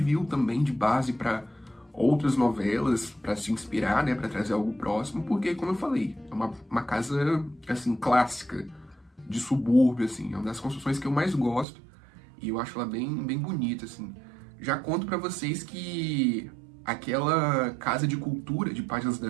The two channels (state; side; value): drops out; left; at 11.7 s